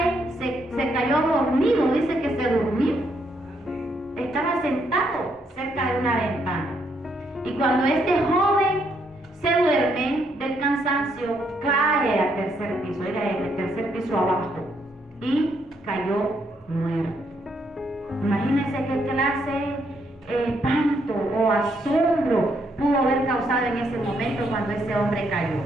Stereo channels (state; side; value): normal; both; correlation 0.74